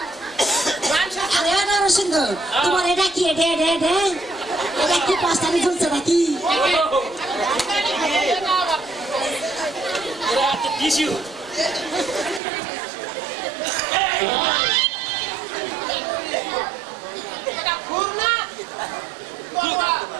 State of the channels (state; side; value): drops out; left; at 12.4 s